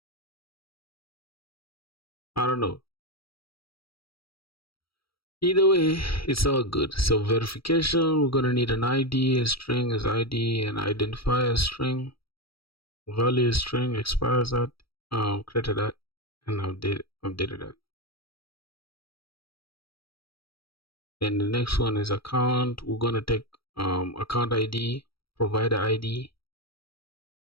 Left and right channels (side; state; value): right; late; 0.75 ms